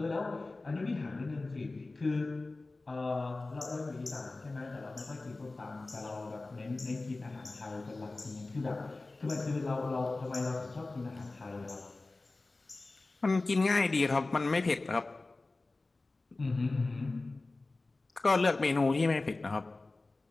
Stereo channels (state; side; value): quieter; right; 3.3 dB